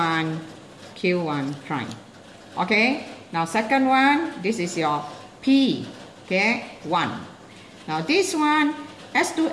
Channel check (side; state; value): both; identical; correlation 1.00